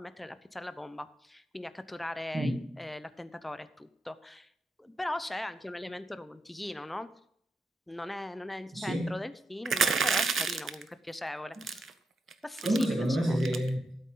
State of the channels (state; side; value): normal; both; correlation 0.84